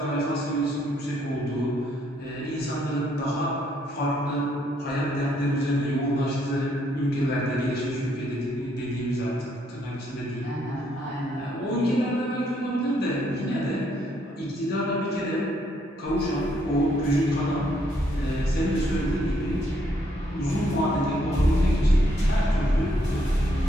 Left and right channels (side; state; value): both; normal; correlation 0.71